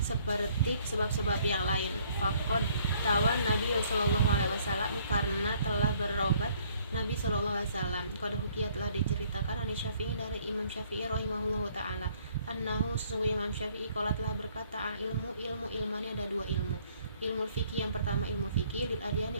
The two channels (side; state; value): both; inverted; correlation -0.63